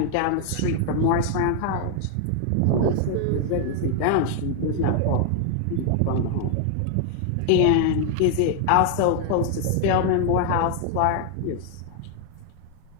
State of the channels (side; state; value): both; different; correlation 0.00